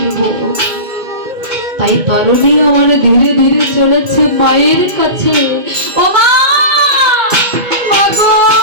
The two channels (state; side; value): late; left; 2.2 ms